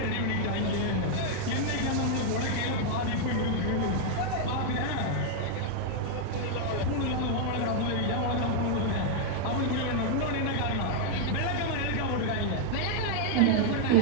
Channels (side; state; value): both; different; correlation 0.00